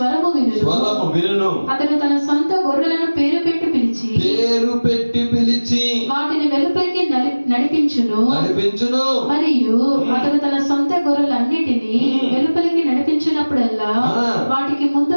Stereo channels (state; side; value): inverted; both; correlation -1.00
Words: వినును. అతడు తన సొంత గొర్రెలను పేరు పెట్టి పిలిచి వాటిని వెలుపలికి నడిపించును. మరియు అతడు తన సొంత గొర్రెలన్నిటినీ వెలుపలికి నడిపించినప్పుడల్లా వాటికి